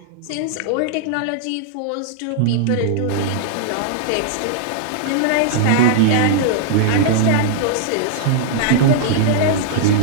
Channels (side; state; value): both; different; correlation -0.01